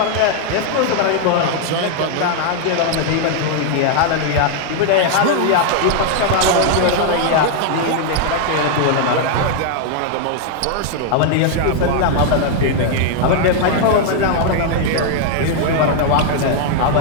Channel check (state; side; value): different; both; correlation 0.00